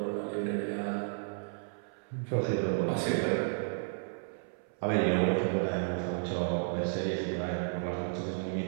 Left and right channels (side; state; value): left; silent; 56 dB below the other